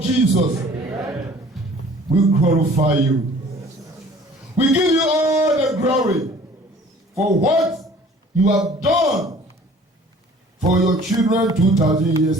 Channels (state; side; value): normal; both; correlation 0.50